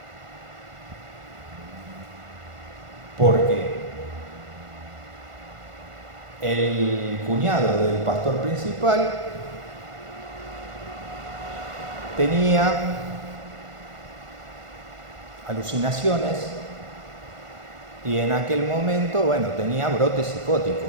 Porque el cuñado del pastor principal tenía alucinaciones y en aquel momento, bueno, tenía brotes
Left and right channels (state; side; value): late; left; 1.5 ms